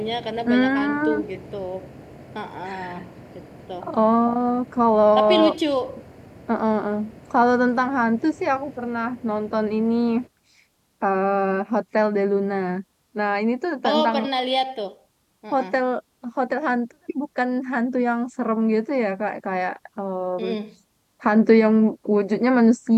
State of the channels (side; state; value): both; identical; correlation 1.00